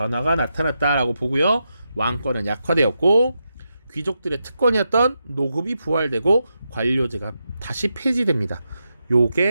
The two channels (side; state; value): both; inverted; correlation -0.86